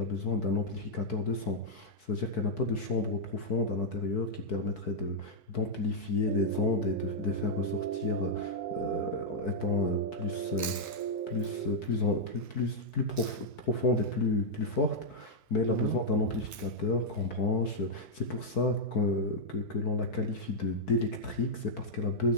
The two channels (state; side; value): normal; both; correlation -0.05